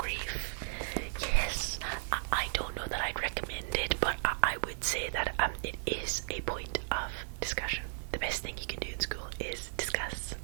Yes, I don't know that I'd recommend it, but I would say that it is a point of discussion. The best thing you can do in school is discuss,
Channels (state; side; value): silent; left; 54 dB below the other